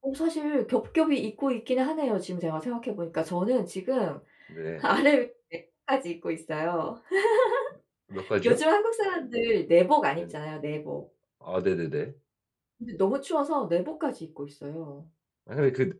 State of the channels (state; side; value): identical; both; correlation 1.00